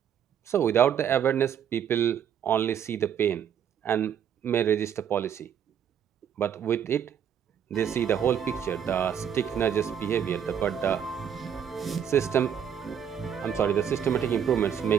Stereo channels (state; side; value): quieter; left; 8.5 dB